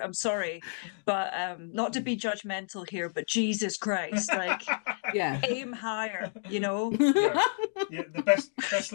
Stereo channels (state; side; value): silent; right; 58 dB below the other